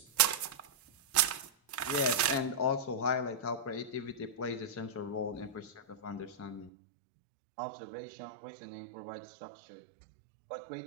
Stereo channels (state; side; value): drops out; left; at 6.7 s